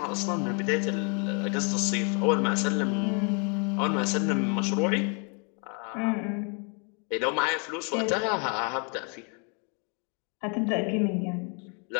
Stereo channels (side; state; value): right; quieter; 36.6 dB